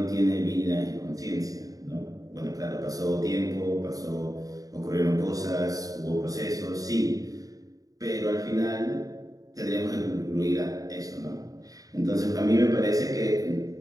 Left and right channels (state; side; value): late; left; 0.17 ms